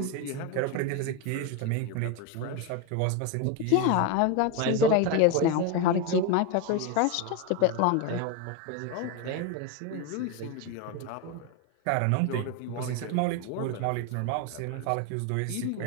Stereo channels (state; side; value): different; both; correlation 0.02